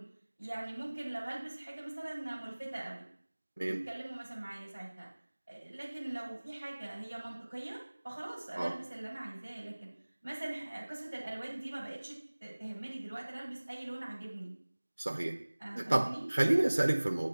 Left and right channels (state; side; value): inverted; both; correlation -1.00